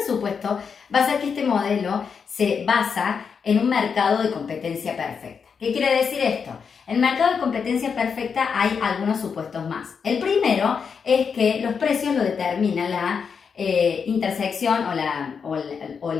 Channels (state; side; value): quieter; right; 6.2 dB